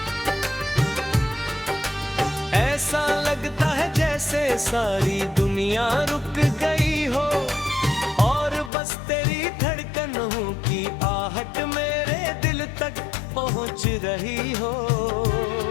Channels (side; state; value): right; drops out; at 8.7 s